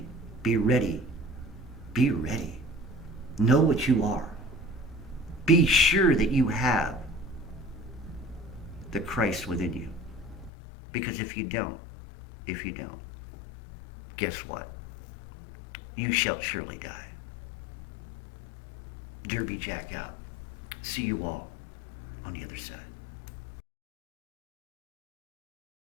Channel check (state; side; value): drops out; right; at 10.5 s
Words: Be ready. Be ready. Know what you are. Be sure that you have the Christ within you. Because if you don't, guess what? You shall surely die. Derby Jack out. See you all on the other side.